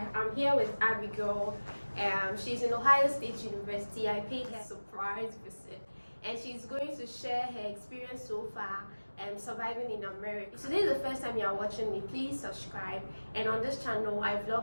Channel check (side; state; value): both; inverted; correlation -1.00